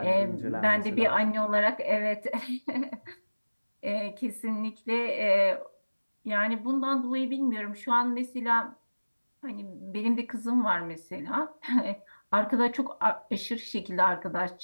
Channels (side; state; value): both; inverted; correlation -1.00